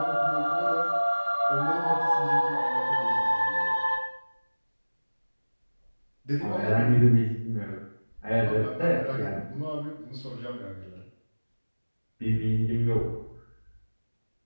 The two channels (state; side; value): inverted; both; correlation -1.00